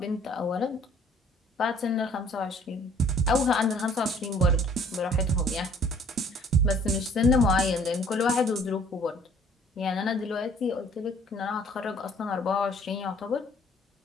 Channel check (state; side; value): normal; both; correlation 0.57